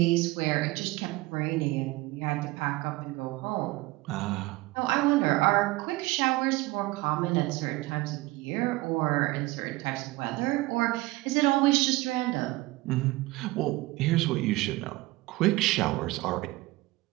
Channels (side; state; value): left; quieter; 20.5 dB